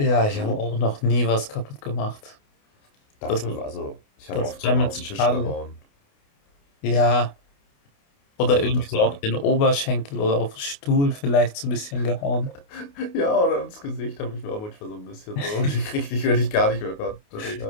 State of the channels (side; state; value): right; late; 28 ms